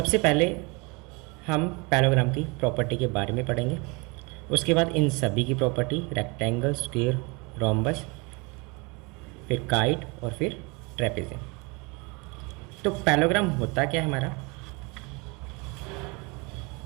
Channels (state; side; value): quieter; left; 28.6 dB